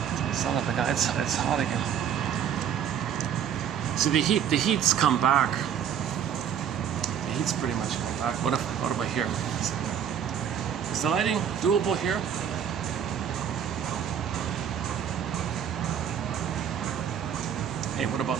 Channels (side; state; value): left; quieter; 8.7 dB